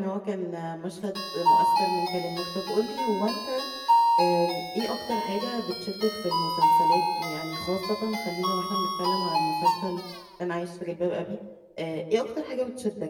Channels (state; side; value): identical; both; correlation 1.00